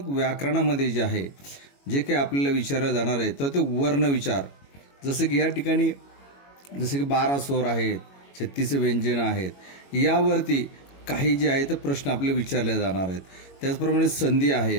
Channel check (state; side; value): late; right; 21 ms